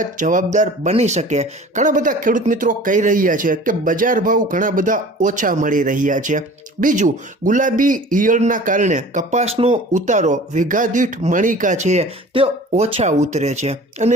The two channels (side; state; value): both; normal; correlation 0.43